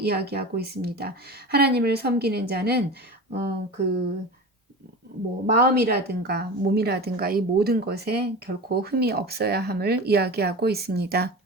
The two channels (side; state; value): both; normal; correlation 0.31